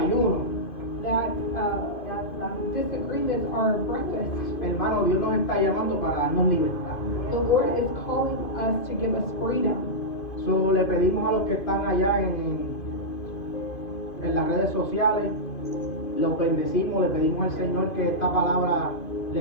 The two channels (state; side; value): late; right; 2.5 ms